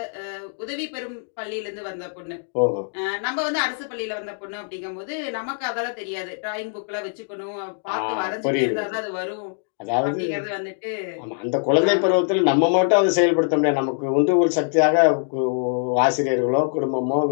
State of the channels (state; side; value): silent; right; digital silence